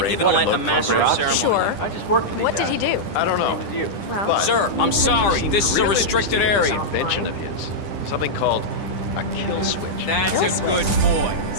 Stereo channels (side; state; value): right; late; 10 ms